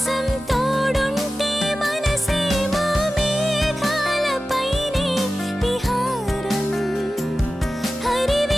తోడుంటే మనసేమో మేఘాలపైనే విహారం,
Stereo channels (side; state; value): both; normal; correlation 0.95